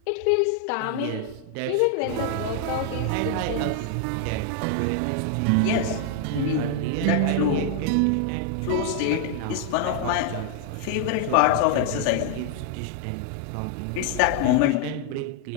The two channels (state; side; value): different; both; correlation 0.00